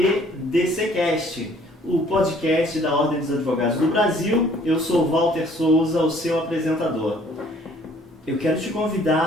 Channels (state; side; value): normal; both; correlation 0.58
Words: DCcast, o podcast da Ordem dos Advogados do Brasil. Eu sou Walter Souza, o seu apresentador. Eu quero te